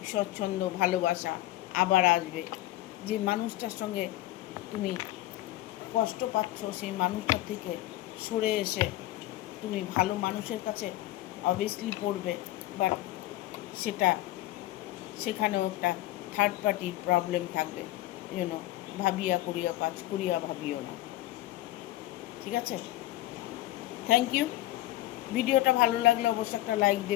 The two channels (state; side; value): quieter; right; 16.0 dB